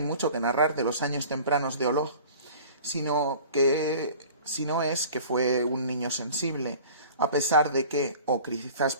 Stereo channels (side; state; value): both; inverted; correlation -0.44